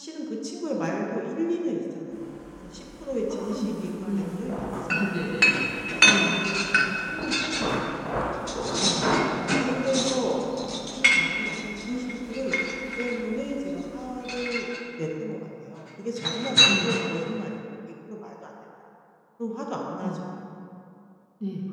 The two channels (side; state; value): both; identical; correlation 1.00